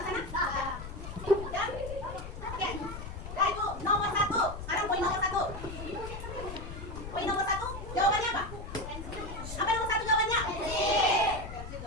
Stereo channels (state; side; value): noise; left; rumble, 9 dB below the sound